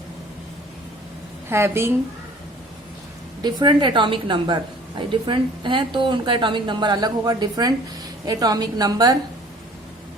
having different atomic number। Different है तो उनका एटॉमिक नंबर अलग होगा। डिफरेंट एटॉमिक नंबर,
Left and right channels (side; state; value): both; normal; correlation 0.50